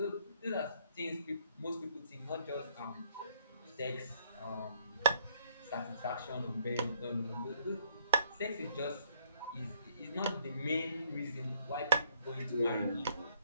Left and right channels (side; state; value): both; inverted; correlation -0.65